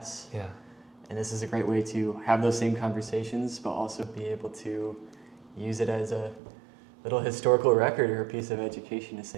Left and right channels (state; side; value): drops out; left; at 6.4 s